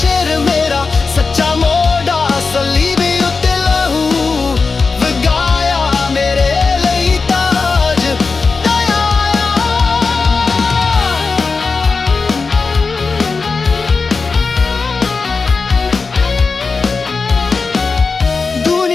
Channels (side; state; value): right; quieter; 4.4 dB